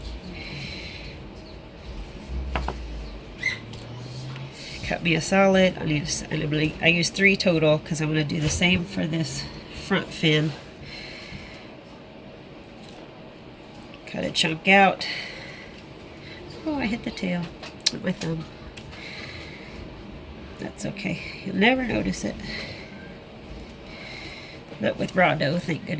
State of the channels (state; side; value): identical; both; correlation 1.00